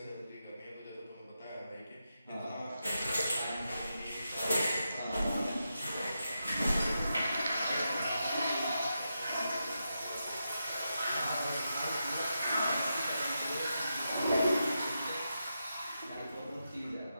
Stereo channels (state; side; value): inverted; both; correlation -0.87